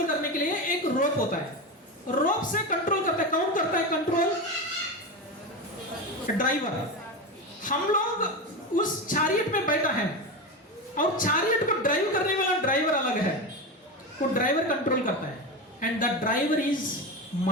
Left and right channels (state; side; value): normal; both; correlation 0.20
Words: करने के लिए एक रोप होता है। रोप से कंट्रोल करता है, कौन करता है कंट्रोल? ड्राइवर। हम लोग उस चैरियट में बैठा है, और चैरियट को ड्राइव करने वाला ड्राइवर अलग है, वो ड्राइवर कंट्रोल करता है, and the driver is